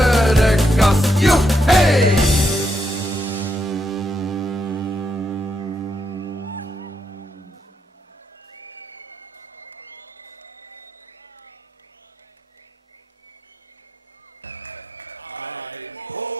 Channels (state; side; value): normal; both; correlation 0.80